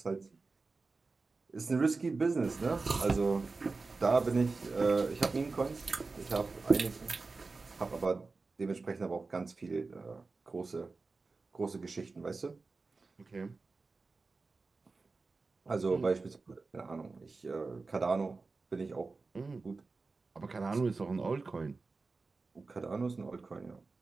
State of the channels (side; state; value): left; quieter; 4.0 dB